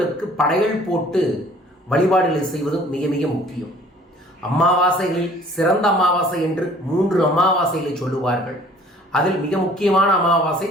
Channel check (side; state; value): both; normal; correlation 0.53